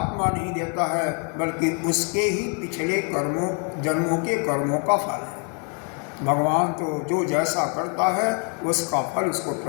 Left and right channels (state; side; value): quieter; right; 38.2 dB